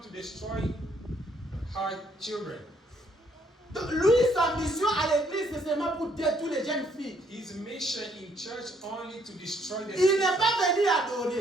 to destroy her children. Donc, lui, sa mission à l'église, c'est seulement pour dire toutes les jeunes filles. His mission in church only to destroy the Il n'est system. pas venu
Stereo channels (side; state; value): both; normal; correlation 0.68